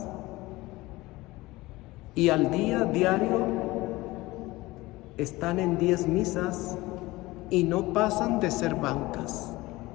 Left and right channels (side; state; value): right; quieter; 19.9 dB